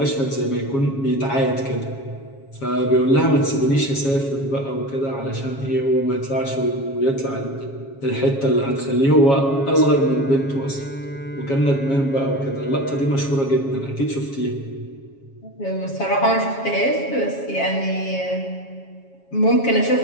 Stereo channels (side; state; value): right; late; 7.3 ms